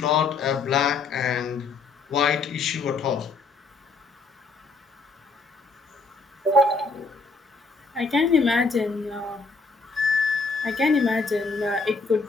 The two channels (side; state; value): right; quieter; 4.1 dB